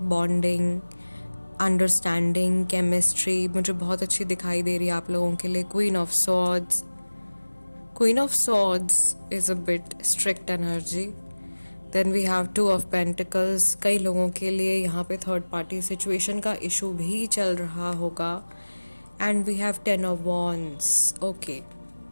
bonding, understanding, chemistry मुझे बहुत अच्छी दिखाई दे रही है आप लोगों के लिए. Queen of swords is a bit strict energy. Then we have two of pentacles. कई लोगों के लिए यहाँ पे थर्ड पार्टी सिचुएशन का इशू भी चल रहा होगा. And we have 10 of wands. Okay,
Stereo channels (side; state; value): both; inverted; correlation -1.00